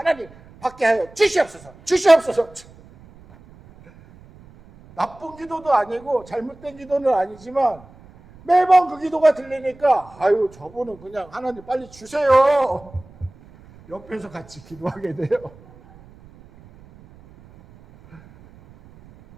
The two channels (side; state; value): right; noise; rumble, 24 dB below the sound